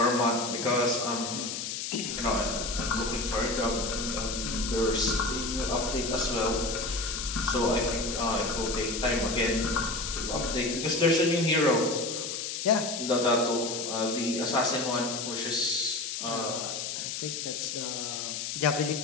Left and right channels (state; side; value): noise; left; hiss, 4 dB below the sound